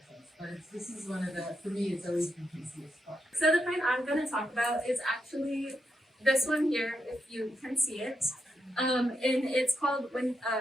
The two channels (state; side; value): normal; both; correlation 0.83